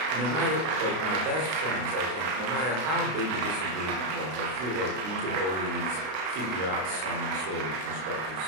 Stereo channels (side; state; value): left; late; 32 ms